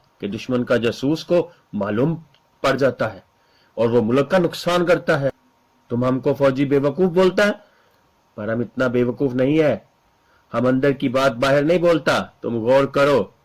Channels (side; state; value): both; identical; correlation 1.00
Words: कि दुश्मन का जासूस को मालूम पड़ जाता है और वो मुल्क का नुकसान करता है। तुम हमको फौजी बेवकूफ बोलता है, पर हम इतना बेवकूफ नहीं है। हम अंदर की बात बाहर नहीं बोलता। तुम गौर करो